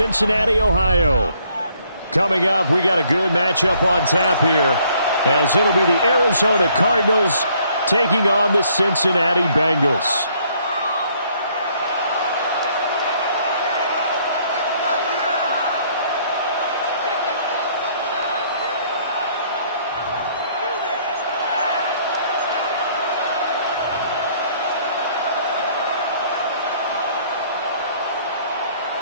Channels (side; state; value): both; inverted; correlation -0.64